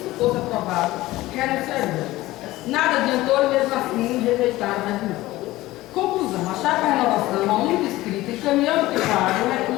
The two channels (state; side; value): quieter; right; 17.6 dB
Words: fosse aprovado, renunciaria. Nada adiantou e, mesmo assim, rejeitaram o regimento. Conclusão, a Chapa Renovação, a única escrita, encaminhando que paga o